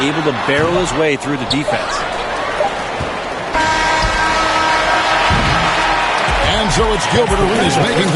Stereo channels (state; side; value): identical; both; correlation 1.00